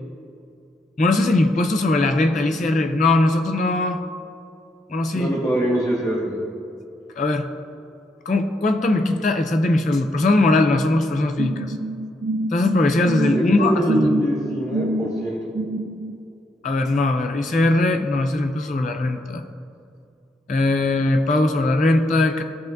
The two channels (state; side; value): normal; both; correlation 0.77